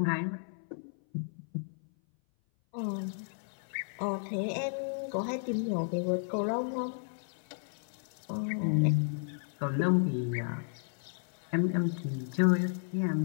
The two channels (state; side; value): silent; right; 56 dB below the other